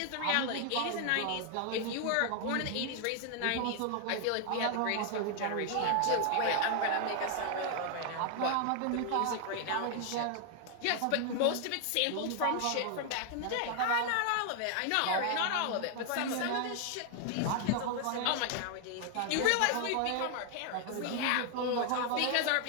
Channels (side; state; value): both; different; correlation 0.00